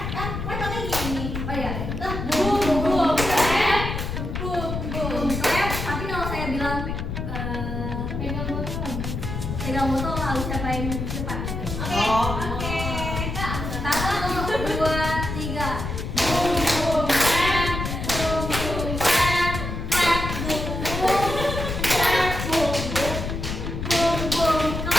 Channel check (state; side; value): noise; left; rumble, 4 dB below the sound